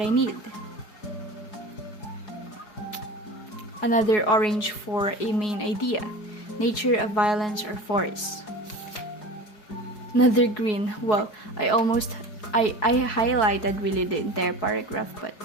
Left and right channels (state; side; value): late; right; 4.7 ms